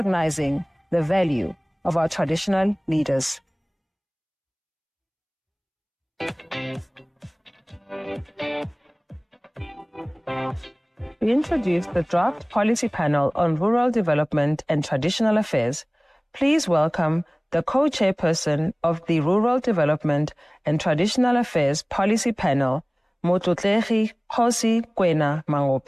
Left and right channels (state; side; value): identical; both; correlation 1.00